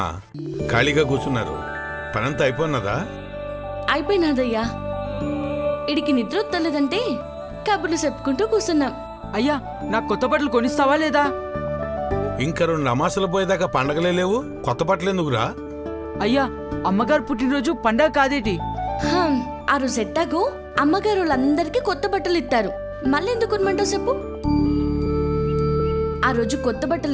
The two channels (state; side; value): identical; both; correlation 1.00